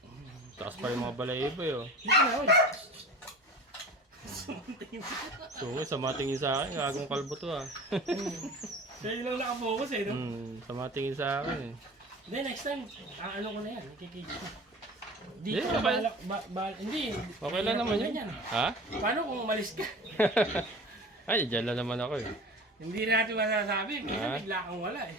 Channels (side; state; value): both; normal; correlation 0.38